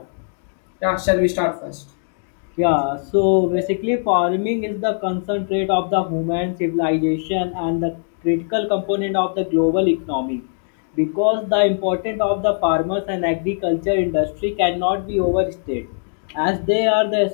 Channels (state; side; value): silent; right; digital silence